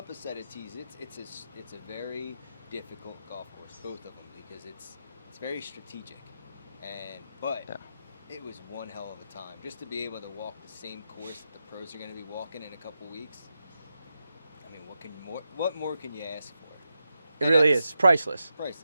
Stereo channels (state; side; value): inverted; both; correlation -0.88